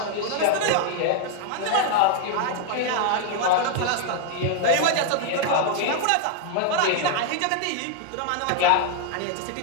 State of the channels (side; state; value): both; different; correlation 0.00